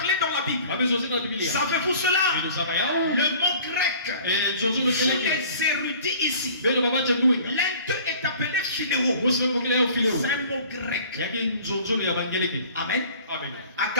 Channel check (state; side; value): inverted; both; correlation -0.48